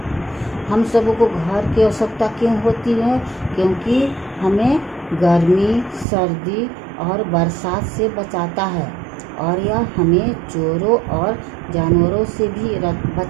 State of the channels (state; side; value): drops out; left; at 6.1 s